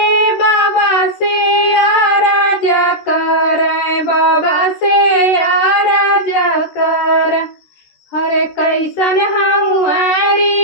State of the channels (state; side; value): late; right; 13 ms